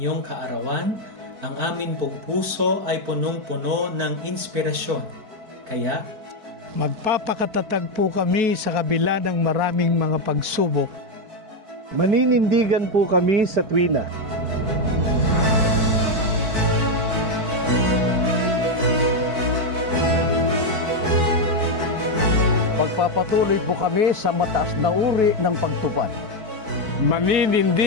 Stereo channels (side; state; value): left; late; 4.6 ms